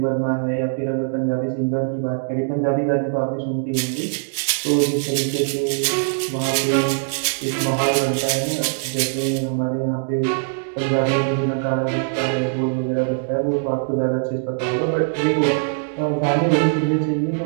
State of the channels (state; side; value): silent; left; digital silence